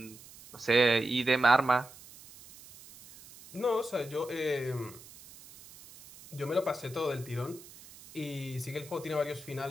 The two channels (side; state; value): right; noise; hiss, 20 dB below the sound